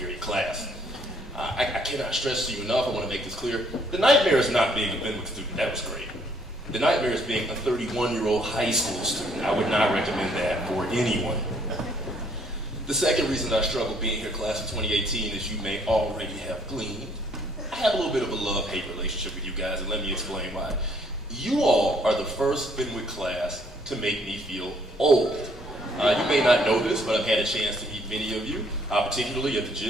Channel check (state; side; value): normal; both; correlation 0.65